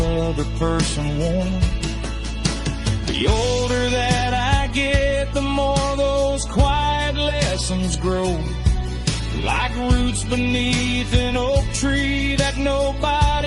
person warm. The older that I get, the more those quiet lessons grow, like roots beneath an oak tree that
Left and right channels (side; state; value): both; identical; correlation 1.00